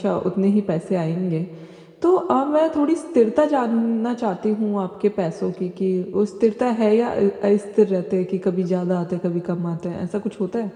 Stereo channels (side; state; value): both; identical; correlation 1.00